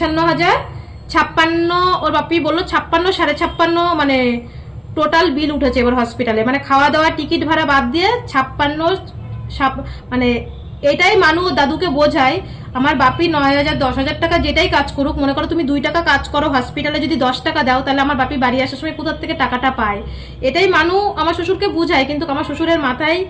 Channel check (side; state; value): both; identical; correlation 1.00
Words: 56, ওর বাপি বললো 56, 56.5, মানে টোটাল বিল উঠেছে এবার হসপিটালে, মানে খাওয়া দাওয়া টিকিট ভাড়া বাদ দিয়ে 56, মানে এটাই মানু দাদুকে বোঝায়। আমার বাপি 9,000, 10,000 টাকা যেটাই কাজ করুক, মনে করো তুমি 2 টাকা কাজ করো হসপিটালে, যদি 10 টাকা দাও তাহলে আমার বাপি বাড়ি আসার সময় কোথা থেকে টাকাটা পায়, এটাই মানু আমার শ্বশুরকে বোঝায়। কিন্তু আমার শ্বশুরের মাথায়